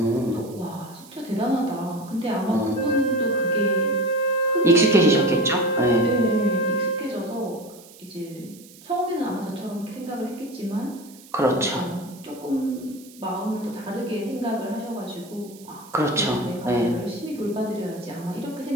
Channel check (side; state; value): right; noise; hiss, 22 dB below the sound